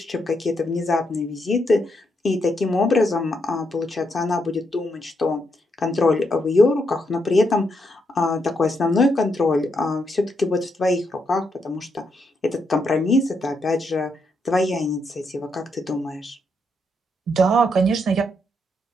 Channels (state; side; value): normal; both; correlation 0.79